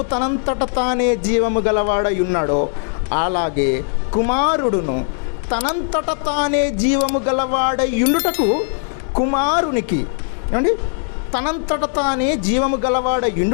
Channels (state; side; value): silent; right; 62 dB below the other